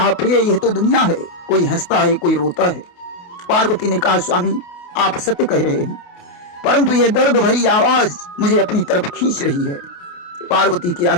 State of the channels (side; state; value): right; late; 28 ms